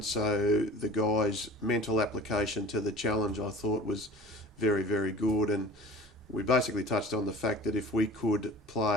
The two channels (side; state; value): both; normal; correlation 0.42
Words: so the guys' mental application to the challenge I thought was very, very good. And we basically touched on the fact that if we could